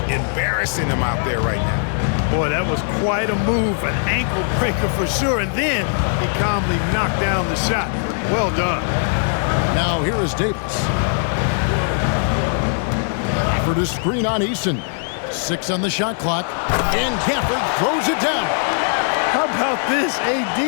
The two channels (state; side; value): silent; right; 66 dB below the other